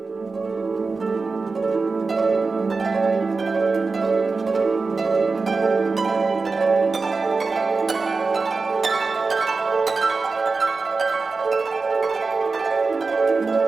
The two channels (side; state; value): left; quieter; 4.2 dB